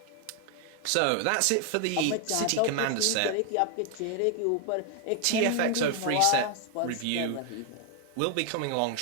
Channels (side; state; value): both; different; correlation 0.00